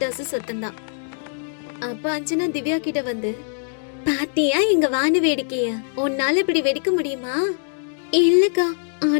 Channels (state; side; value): silent; right; digital silence